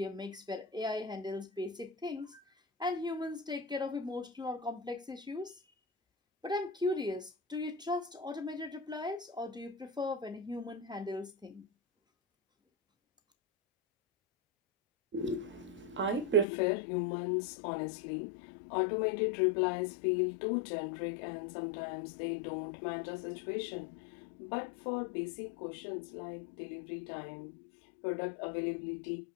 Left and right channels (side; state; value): right; drops out; at 16.4 s